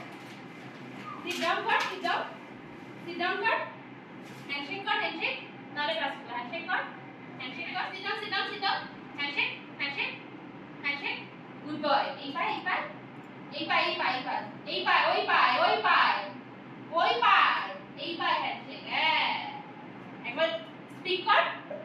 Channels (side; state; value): both; identical; correlation 1.00